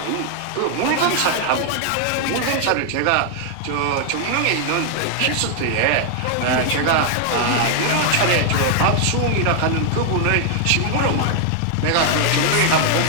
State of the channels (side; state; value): both; different; correlation 0.00